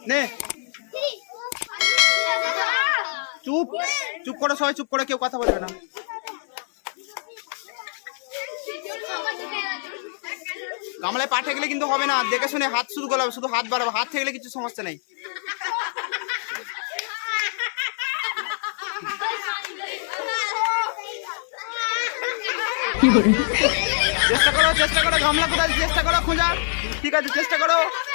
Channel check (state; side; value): silent; right; 62 dB below the other